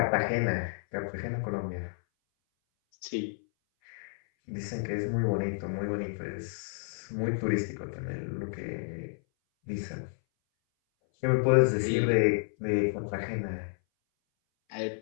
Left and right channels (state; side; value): silent; right; 57 dB below the other